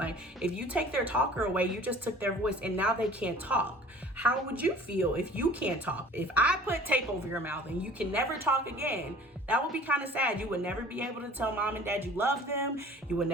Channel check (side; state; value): both; normal; correlation 0.47